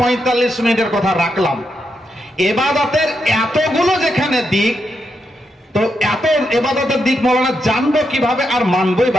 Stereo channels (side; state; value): both; normal; correlation 0.83